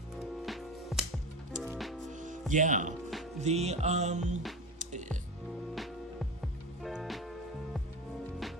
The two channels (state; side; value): normal; both; correlation 0.25